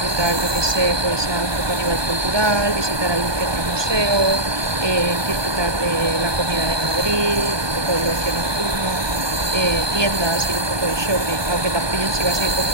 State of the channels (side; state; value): left; late; 1.2 ms